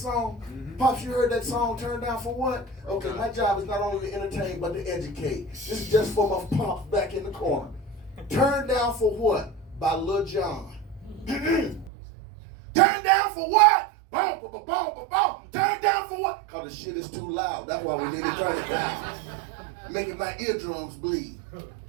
song? Mm-hmm. Pops, you heard that song, Turn Down for What? Okay, my job is not only to entertain, but to educate. This is just for my pops back in the corner. Turn Down for What? By Lil Jon. Turn down for what? Boom, boom, boom, boom, boom. Turn down for what? Because the shit is too loud. That's why we need to turn it down. Making my eardrums bleed.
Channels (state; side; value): drops out; left; at 11.9 s